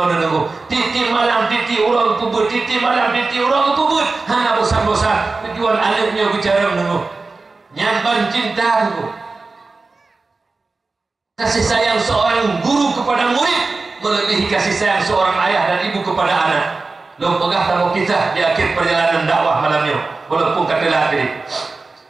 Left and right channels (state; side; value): quieter; left; 3.8 dB